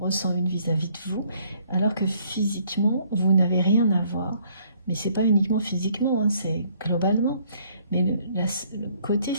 une vis-à-vis de vous, alors que physiquement, vous n'avez rien à voir. Mais ce n'est pas uniquement physiquement, hein, c'est globalement. Mais le côté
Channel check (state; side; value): inverted; both; correlation -0.64